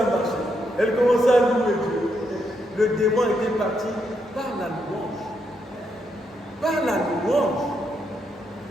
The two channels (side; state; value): both; normal; correlation 0.79